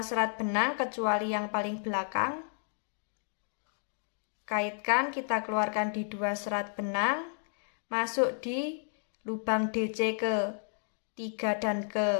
serat benang kecuali yang paling belakang. Kaitkan, kita keluarkan di 2 serat benang, masuk di lubang DC ke 3 dan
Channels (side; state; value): right; silent; digital silence